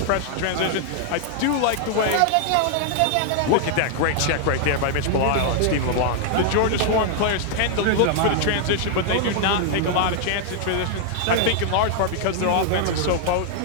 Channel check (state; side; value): different; both; correlation 0.00